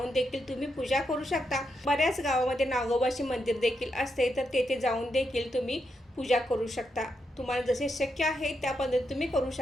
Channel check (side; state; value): both; normal; correlation 0.83